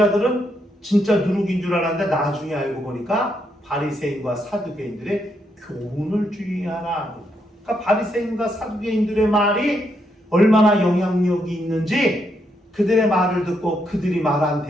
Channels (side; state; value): both; normal; correlation 0.78